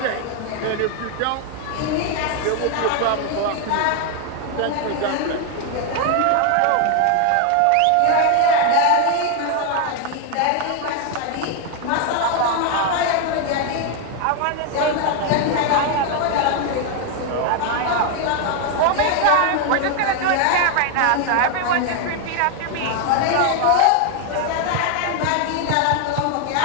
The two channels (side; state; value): both; different; correlation 0.01